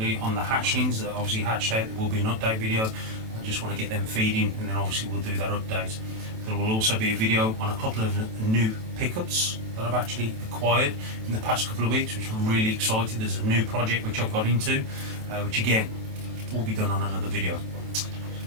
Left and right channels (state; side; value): late; left; 27 ms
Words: on the hatchlings that obviously hatched out. There will be an update video. I just want to get them feeding, and then obviously we'll do that update. There will also be a video on a couple of new pickups that I've actually acquired in the past couple of weeks, which I'm really excited. There's a new project which I've got into, which again will be done on another video.